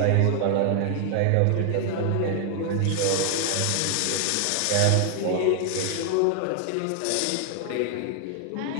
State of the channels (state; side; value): different; both; correlation 0.00